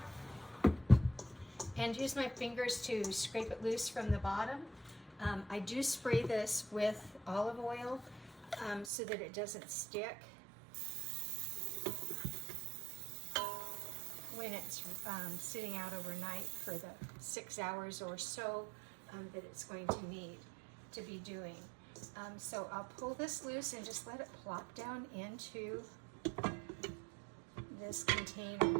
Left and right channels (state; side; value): drops out; left; at 8.8 s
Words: and use my fingers to scrape it loose from the bottom. I do spray this with olive oil so that it doesn't stick when it's sitting out overnight for the 6 hours or so that it's going to need to be doing. So I'll pull this loose and just let it plop down into this